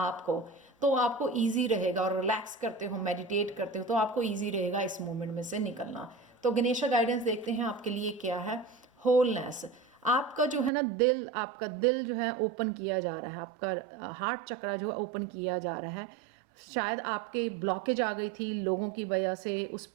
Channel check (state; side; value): drops out; left; at 10.7 s